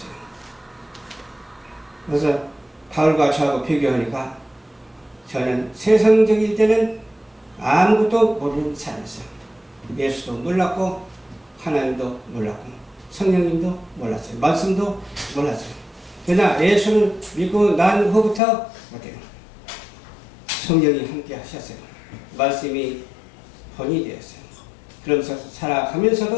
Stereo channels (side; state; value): right; drops out; at 18.4 s